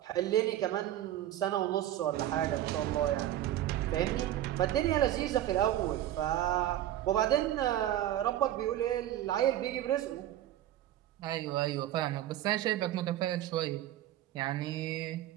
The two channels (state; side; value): quieter; left; 12.8 dB